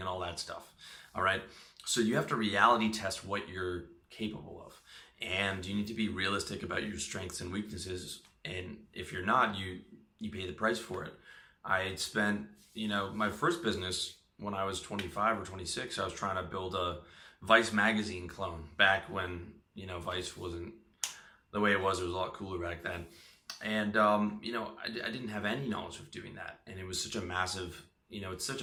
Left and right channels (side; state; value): both; identical; correlation 1.00